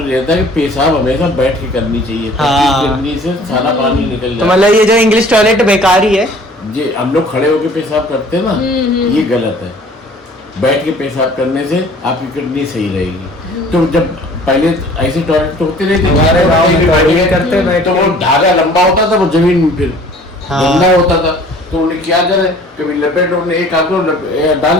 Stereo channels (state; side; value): normal; both; correlation 0.51